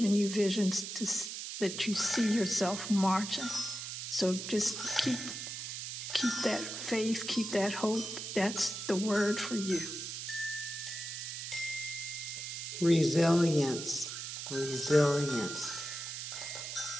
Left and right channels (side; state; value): right; noise; hiss, 6 dB below the sound